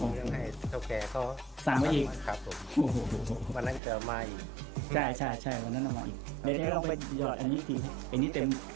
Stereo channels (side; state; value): left; drops out; at 3.8 s